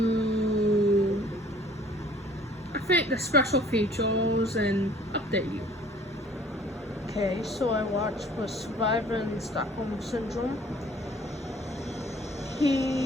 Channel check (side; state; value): both; normal; correlation 0.54